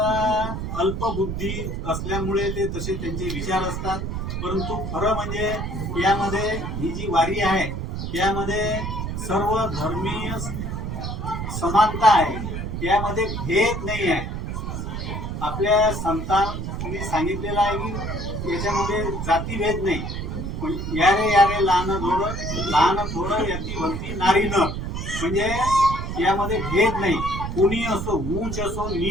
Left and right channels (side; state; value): right; noise; rumble, 4 dB below the sound